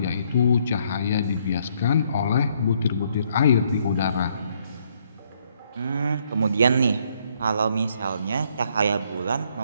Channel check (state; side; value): inverted; both; correlation -0.70